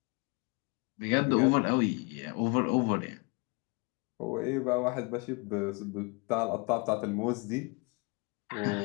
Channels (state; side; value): quieter; right; 30.8 dB